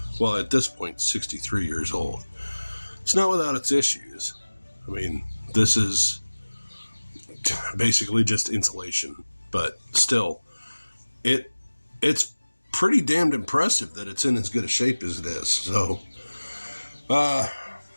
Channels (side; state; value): both; inverted; correlation -1.00